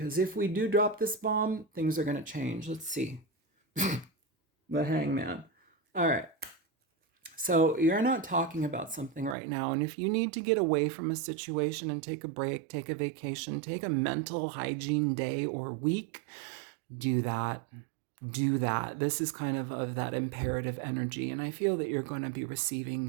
if we do drop this bomb, things are going to change. Let's see. The hangman. All right. So you're not talking about something right now. And if you need to get away from a situation and take a break, take a vacation, take a mental hygiene day or week, do that. Do that. This is kind of that imperative energy. And I feel that you're going to be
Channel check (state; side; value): drops out; left; at 9.3 s